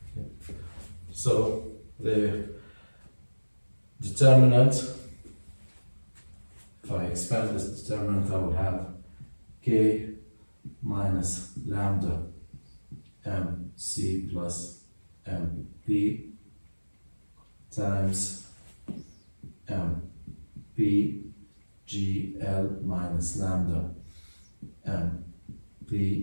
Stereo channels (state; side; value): inverted; both; correlation -1.00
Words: So the determinant, if I expand this determinant, I will have k minus lambda mc plus mp times mpgl minus lambda